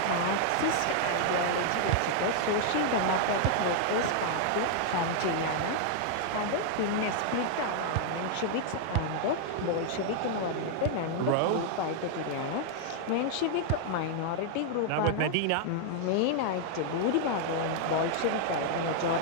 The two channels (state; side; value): different; both; correlation 0.00